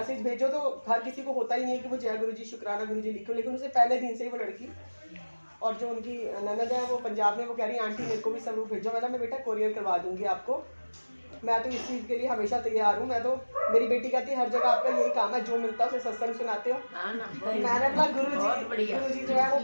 भेजो तो हर किसी को होता ही नहीं है कि वो जय गुरु जी, शुक्राना गुरु जी लिखो, लेकिन उसे पहले दिन से ही वो लड़की, और जो उनकी ननद है वो पंजाब में, वो कह रही आंटी मेरे को भी स्वरूप भेजो। मैं बेटा कोरियर करवा दूंगी आपको, मैं तो इस चीज़ के लिए हमेशा तैयार हूँ। मैं तो, मेरी बेटी कहती है हर जगह आपका यही काम है, जो मिलता है उसे सत्संग सुनाते हो। मैंने बोला गुरु जी जो है वो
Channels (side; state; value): both; inverted; correlation -1.00